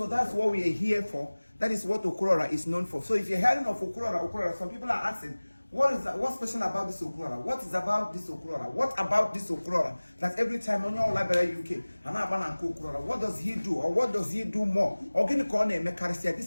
that's what we are here for. That is what Okurora is known for. So if you're hearing of Okurora, some people are asking, what's special about this Okurora? What is about this Okurora? What about this Okurora? That every time on your library UK, what does he do? Or what does he do more?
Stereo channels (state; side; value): inverted; both; correlation -1.00